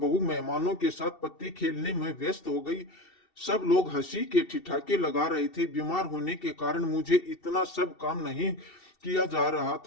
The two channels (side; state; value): right; late; 2.7 ms